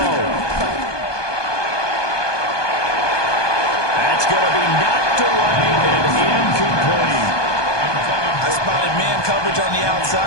That's going to be knocked away and incomplete. I spotted man coverage on the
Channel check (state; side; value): late; right; 1.2 ms